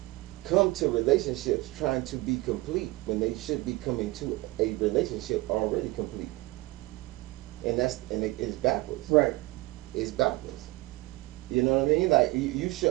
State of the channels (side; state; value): left; quieter; 21.3 dB